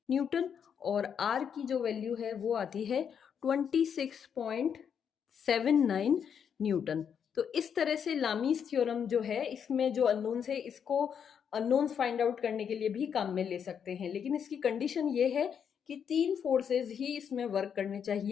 न्यूटन, और r की जो वैल्यू है वो आती है 26.79 न्यूटन। तो इस तरह से लामीज थ्योरम जो है, इसमें जो अननोन्स है इसको अननोन्स फाइंड आउट करने के लिए भी काम में ले सकते हैं, लेकिन इसकी कंडीशन ये है कि 3 फोर्सेस ही इसमें वर्क करने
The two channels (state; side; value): quieter; right; 7.7 dB